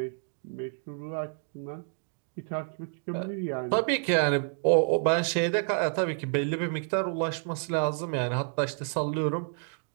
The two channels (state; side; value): silent; left; 58 dB below the other